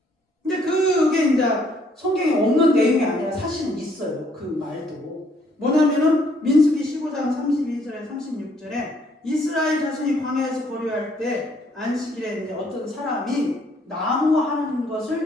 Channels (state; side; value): normal; both; correlation 0.66